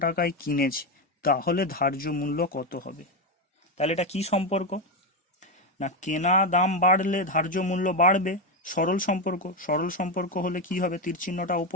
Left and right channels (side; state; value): both; normal; correlation 0.10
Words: টাকায় কিনেছে, তাহলে ধার্য মূল্য কত হবে? তাহলে এটা কি সম্পর্ক না, কেনা দাম বাড়লে ধার্য মূল্য বাড়বে, সরল সম্পর্ক। সরল সম্পর্ক হলে কি হবে? তীর চিহ্নটা